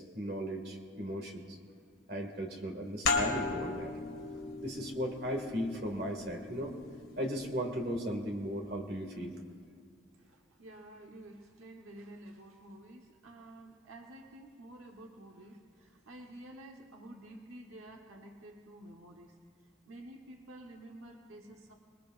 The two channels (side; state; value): both; normal; correlation 0.33